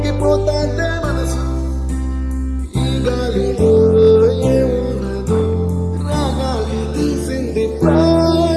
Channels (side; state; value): both; identical; correlation 1.00